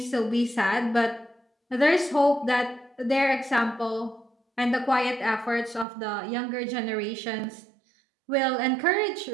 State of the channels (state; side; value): drops out; left; at 5.9 s